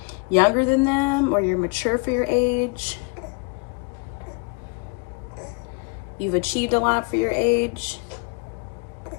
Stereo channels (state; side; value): quieter; right; 32.7 dB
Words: younger than them or you're mature for your age. You've achieved a lot for your age.